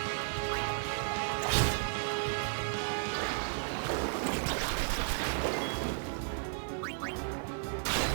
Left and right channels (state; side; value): silent; left; 55 dB below the other